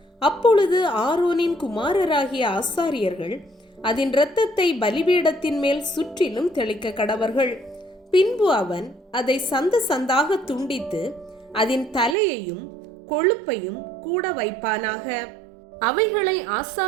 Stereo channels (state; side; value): drops out; left; at 12.2 s